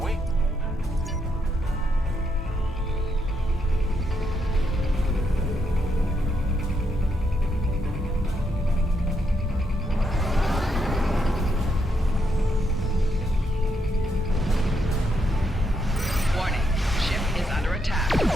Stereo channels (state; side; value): normal; both; correlation 0.78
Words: Warning, ship is under attack.